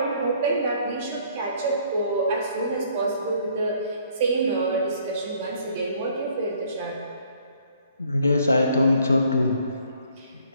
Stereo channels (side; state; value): both; inverted; correlation -0.62